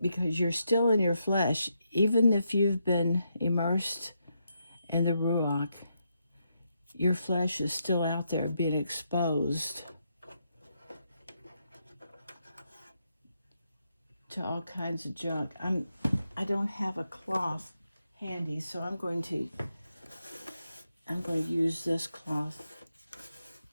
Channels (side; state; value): both; inverted; correlation -0.81